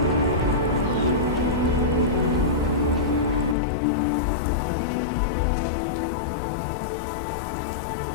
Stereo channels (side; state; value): right; drops out; at 3.6 s